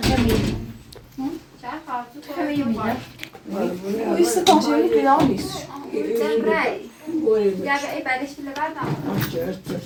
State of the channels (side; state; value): both; identical; correlation 1.00